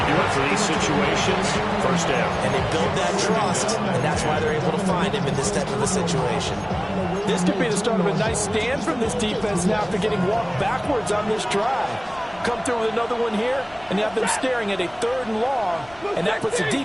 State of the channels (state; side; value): noise; left; rumble, 24 dB below the sound